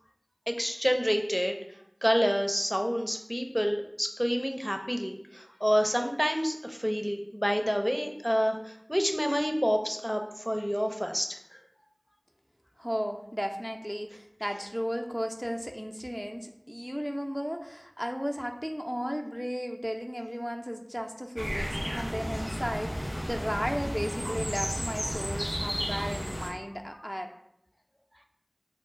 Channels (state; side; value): identical; both; correlation 1.00